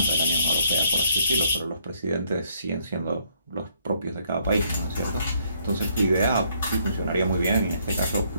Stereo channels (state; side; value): inverted; both; correlation -0.68